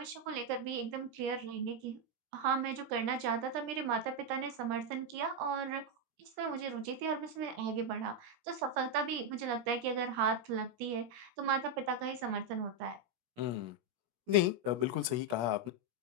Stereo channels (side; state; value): left; late; 17 ms